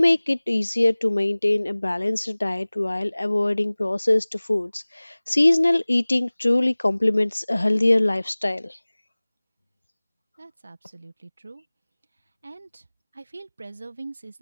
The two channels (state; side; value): inverted; both; correlation -1.00